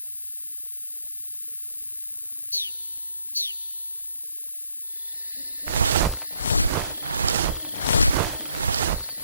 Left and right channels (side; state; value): both; inverted; correlation -0.71